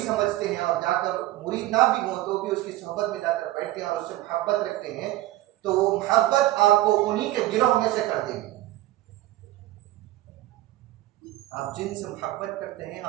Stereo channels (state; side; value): quieter; left; 16.5 dB